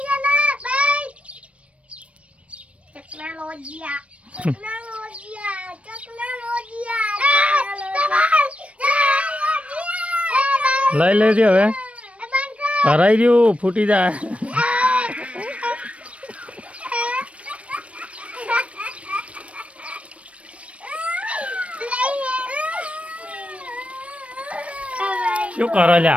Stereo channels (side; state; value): left; late; 0.063 ms